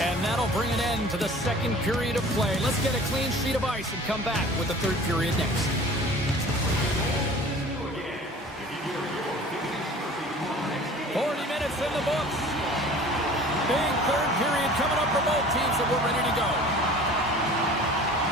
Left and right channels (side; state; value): both; normal; correlation 0.45